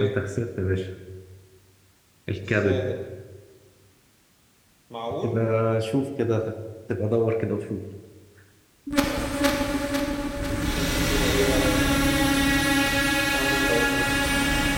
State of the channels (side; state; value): both; identical; correlation 1.00